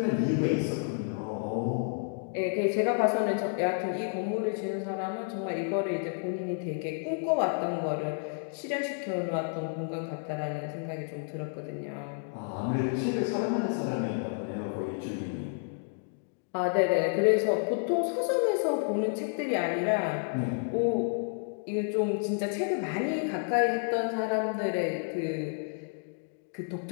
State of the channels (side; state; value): right; silent; 57 dB below the other